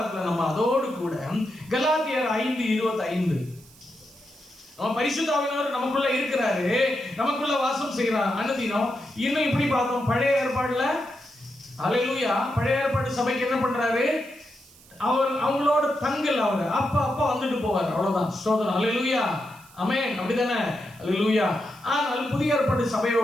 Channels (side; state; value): right; noise; hiss, 24 dB below the sound